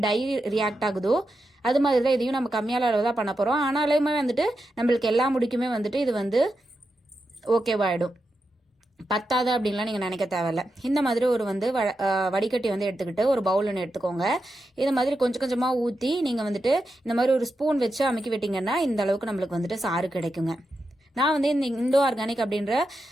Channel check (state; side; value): normal; both; correlation 0.88